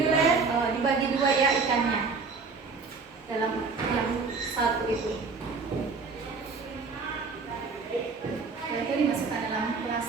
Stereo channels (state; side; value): quieter; left; 4.5 dB